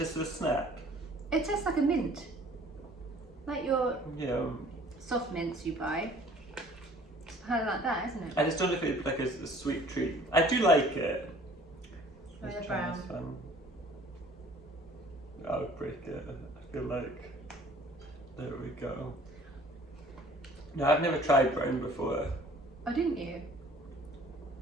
as a snack. It tastes like a mint, like your soft mints you buy. It's kind of like that, isn't it? I just don't know if it's like a sweet treat. I do like it. Very brown. I would break it. I feel like there we go. No, I've never tried brown before. Oh, didn't you?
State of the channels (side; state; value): both; normal; correlation 0.52